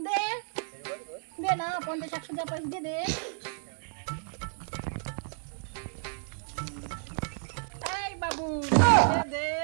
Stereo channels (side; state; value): left; silent; digital silence